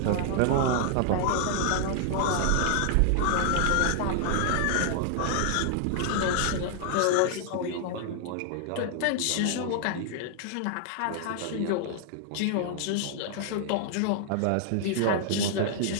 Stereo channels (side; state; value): both; different; correlation 0.00